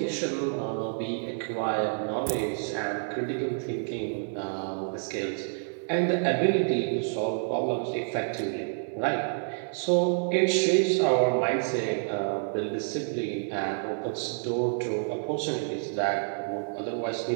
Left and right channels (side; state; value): left; silent; 59 dB below the other